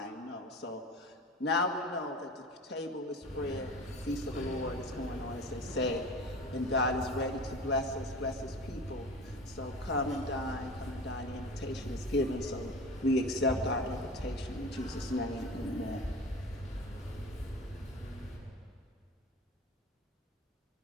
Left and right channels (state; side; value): normal; both; correlation 0.35